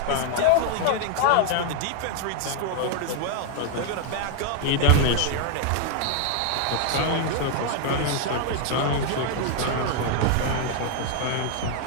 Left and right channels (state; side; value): different; both; correlation 0.00